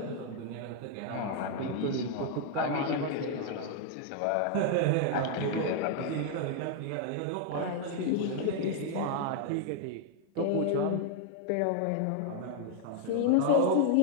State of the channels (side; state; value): both; different; correlation 0.00